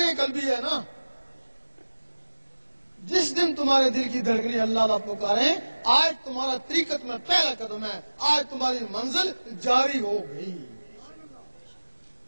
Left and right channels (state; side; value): inverted; both; correlation -1.00